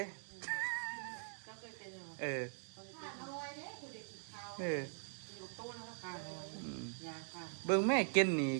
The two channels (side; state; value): left; silent; digital silence